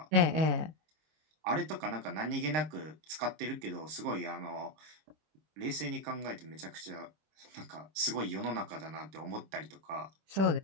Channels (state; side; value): late; left; 26 ms